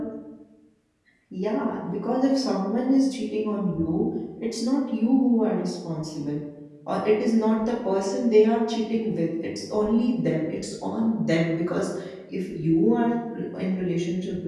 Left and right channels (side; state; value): both; identical; correlation 1.00